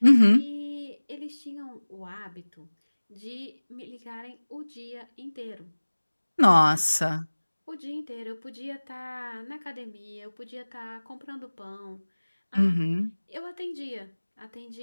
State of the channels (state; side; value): inverted; both; correlation -1.00